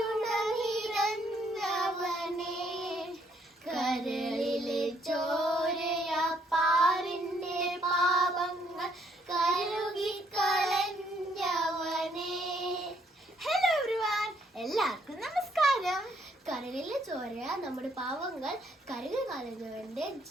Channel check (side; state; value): both; normal; correlation 0.69